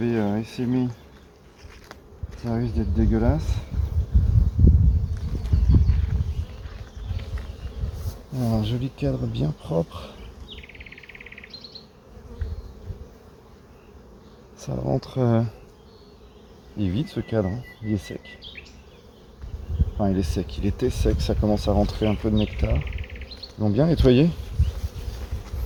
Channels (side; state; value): both; identical; correlation 1.00